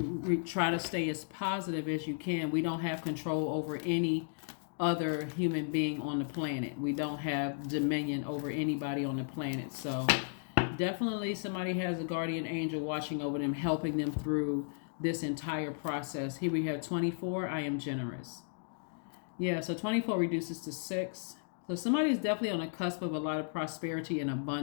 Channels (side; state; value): right; silent; digital silence